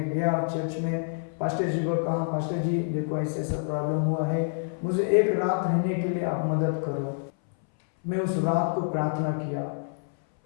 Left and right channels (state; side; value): silent; right; 60 dB below the other